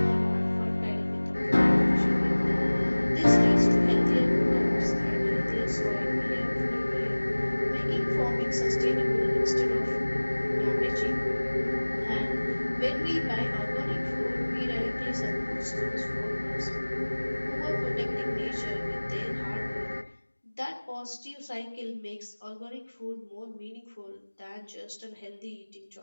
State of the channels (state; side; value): inverted; both; correlation -1.00